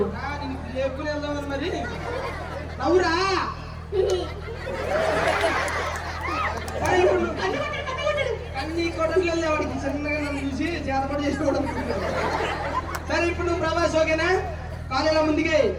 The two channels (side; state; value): both; identical; correlation 1.00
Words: లేపుకుని వెళ్దామని మరి. నవ్వురా. కన్నీ కొట్టట్లేదు వాడికి. చిన్నగా నన్ను చూసి చేతపడి చేసుకోవడం. సరే ఇప్పుడు నువ్వు ప్రభాస్ ఓకేనా? కాలేలా ముందుకే